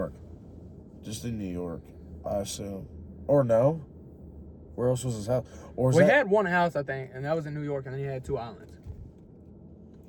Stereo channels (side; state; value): both; identical; correlation 1.00